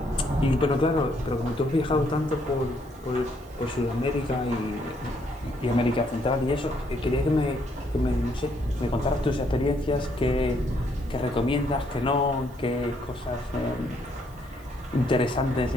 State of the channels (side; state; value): both; normal; correlation 0.71